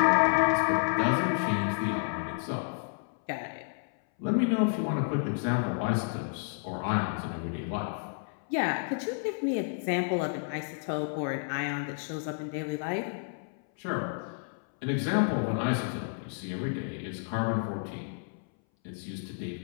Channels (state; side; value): silent; right; 57 dB below the other